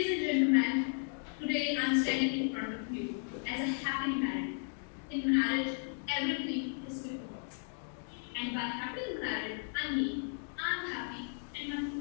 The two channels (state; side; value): silent; right; 55 dB below the other